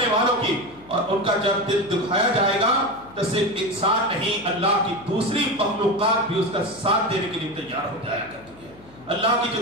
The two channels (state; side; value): noise; left; hum, 24 dB below the sound